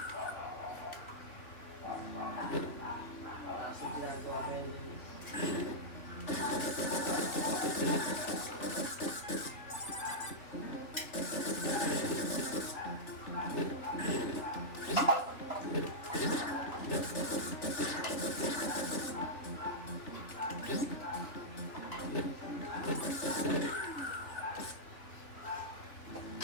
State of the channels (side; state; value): right; late; 3.1 ms